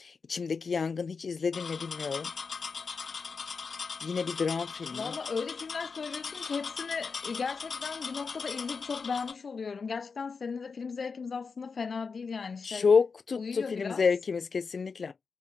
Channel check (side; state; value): right; quieter; 5.1 dB